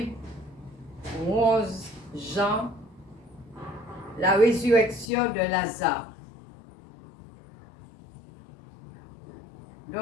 11 Jean, la résurrection de Lazare.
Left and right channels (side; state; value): right; drops out; at 5.1 s